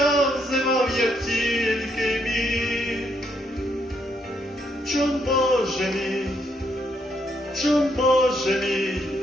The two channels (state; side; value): normal; both; correlation 0.75